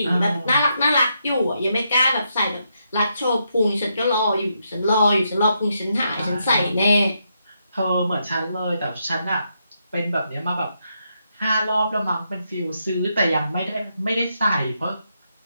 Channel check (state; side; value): inverted; both; correlation -0.80